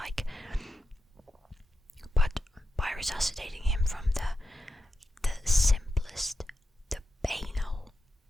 But by resuscitating him from the simplest, the banal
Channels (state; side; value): normal; both; correlation 0.90